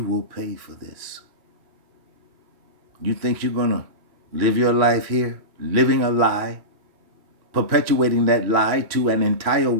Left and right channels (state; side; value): late; left; 3.1 ms